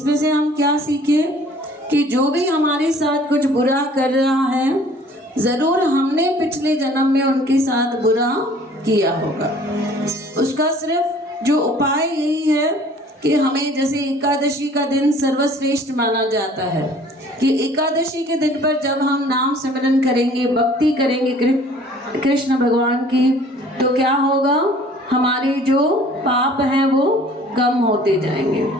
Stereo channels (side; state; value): both; normal; correlation 0.52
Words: हम क्या सीखे कि जो भी हमारे साथ कुछ बुरा कर रहा है, ज़रूर हमने पिछले जन्म में उनके साथ बुरा किया होगा। उसका सिर्फ जो उपाय यही है कि हमें, जैसे एकादशी का दिन सर्वश्रेष्ठ माना जाता है, कि एकादशी के दिन पर जब हम नाम सिमरन करेंगे, भक्ति करेंगे कृष्ण भगवान की, तो क्या होगा, हमारे जो पाप हैं वो कम होते जाएंगे।